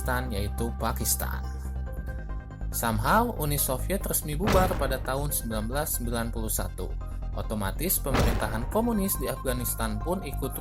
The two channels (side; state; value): both; identical; correlation 1.00